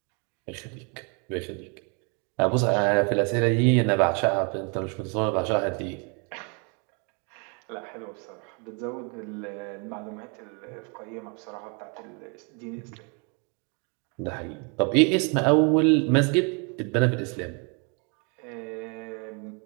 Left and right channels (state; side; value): quieter; left; 35.0 dB